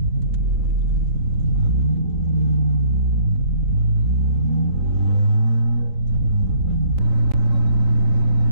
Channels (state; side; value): late; left; 3.9 ms